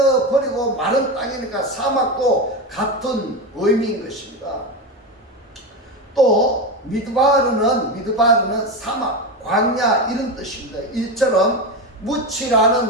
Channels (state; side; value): normal; both; correlation 0.17